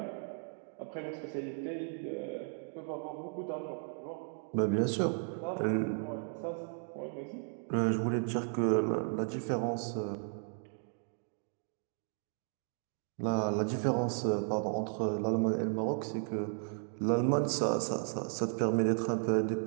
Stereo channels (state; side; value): silent; left; 54 dB below the other